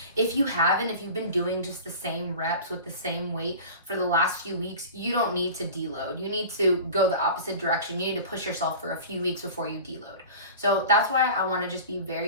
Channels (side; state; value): both; inverted; correlation -0.37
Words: If you haven't, if you've been doing just the same reps with the same weight for the last few weeks, you don't need to deload. You need to go the opposite direction. You need to push yourself for a few weeks before you deload. So that's why I want to just be